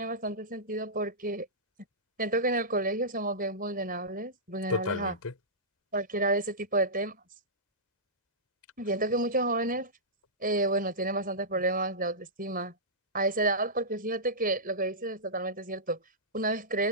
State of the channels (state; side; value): normal; both; correlation -0.16